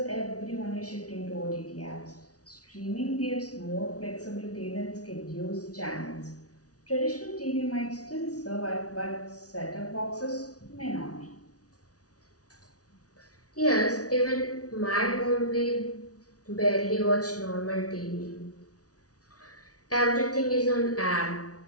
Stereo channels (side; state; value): right; late; 0.68 ms